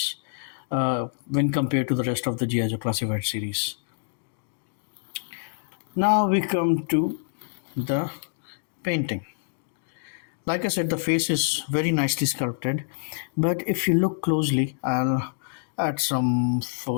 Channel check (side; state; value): right; silent; digital silence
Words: when compared to the rest of the G.I. Joe Classified series. Now we come to the painting. Like I said, the face is very nicely sculpted, but if you look closely, I'll add some